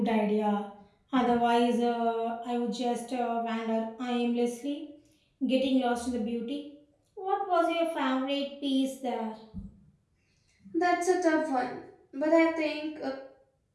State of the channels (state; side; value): identical; both; correlation 1.00